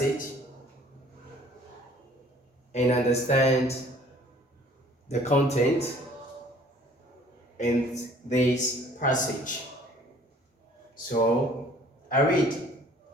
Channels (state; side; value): normal; both; correlation 0.55